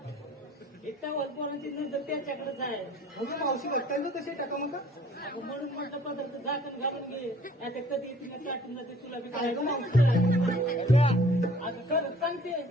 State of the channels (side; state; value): both; normal; correlation 0.53